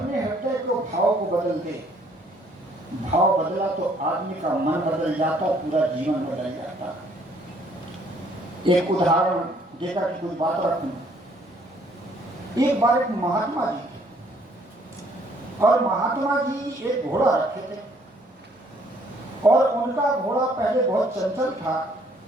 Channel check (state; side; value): normal; both; correlation 0.63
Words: हृदय को भाव को बदल दे, भाव बदला तो आदमी का मन बदल जाता, पूरा जीवन बदल जाता। एक उदाहरण देकर के कुछ बात रखूं। एक बार एक महात्मा जी थे, और महात्मा जी एक घोड़ा रखे थे, और उनका घोड़ा पहले बहुत चंचल था,